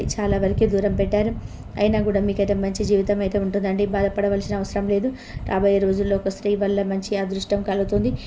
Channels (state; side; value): identical; both; correlation 1.00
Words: చాలా వరకు దూరం పెట్టారు. అయినా కూడా మీకైతే మంచి జీవితం అయితే ఉంటుందండి. బాధపడవలసిన అవసరం లేదు. రాబోయే రోజుల్లో ఒక స్త్రీ వల్ల మంచి అదృష్టం కలుగుతుంది.